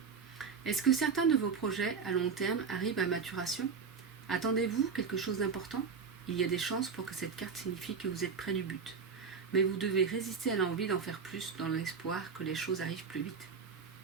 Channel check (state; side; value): quieter; left; 5.7 dB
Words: Est-ce que certains de vos projets à long terme arrivent à maturation? Attendez-vous quelque chose d'important? Il y a des chances pour que cette carte signifie que vous êtes près du but. Mais vous devez résister à l'envie d'en faire plus dans l'espoir que les choses arrivent plus vite.